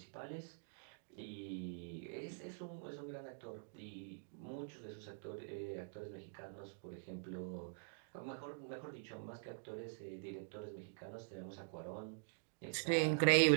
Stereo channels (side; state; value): left; silent; digital silence